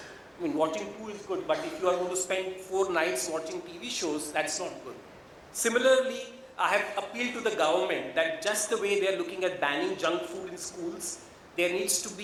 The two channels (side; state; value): both; identical; correlation 1.00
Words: watching 2 is good, but if you are going to spend 4 nights watching TV shows, that's not good. Similarly, I have appealed to the government that just the way they are looking at banning junk food in schools, there needs to